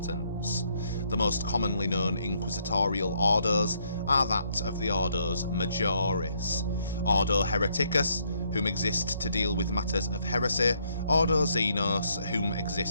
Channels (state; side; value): inverted; both; correlation -0.71